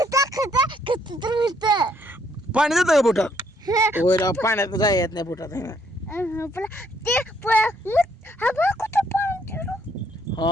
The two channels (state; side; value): normal; both; correlation 0.69